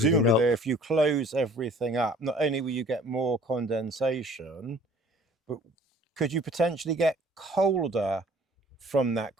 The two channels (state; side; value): normal; both; correlation 0.52